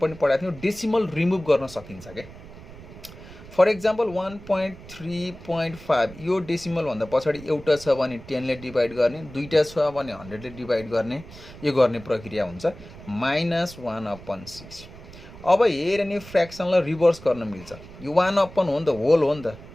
पनि पढाएको थियौँ डेसिमल रिमुभ गर्न सकिन्छ के फर एक्जाम्पल 1.3.5 यो डेसिमल भन्दा पछाडि एउटा छ भने 10 ले डिभाइड गर्ने दुईटा छ भने 100 ले डिभाइड गर्ने यो गर्ने प्रक्रिया हुन्छ माइनस 1/6 अब हेर नि फ्र्याक्सनलाई रिभर्स गर्न मिल्छ यो 1/1 हो नि त होल हो नि त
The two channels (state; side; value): noise; right; rumble, 17 dB below the sound